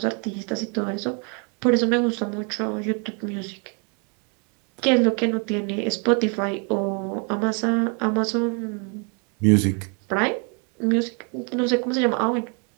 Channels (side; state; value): left; quieter; 36.9 dB